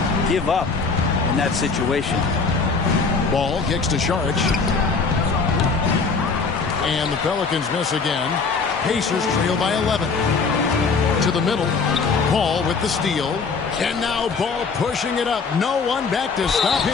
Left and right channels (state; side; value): quieter; right; 4.8 dB